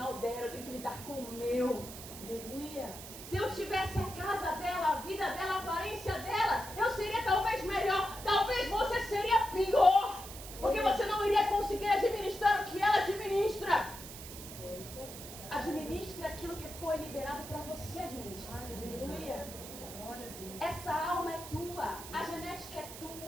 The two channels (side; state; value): right; noise; hiss, 12 dB below the sound